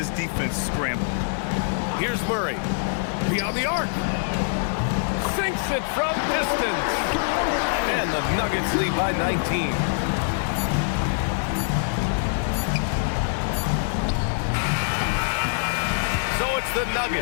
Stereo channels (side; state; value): right; silent; digital silence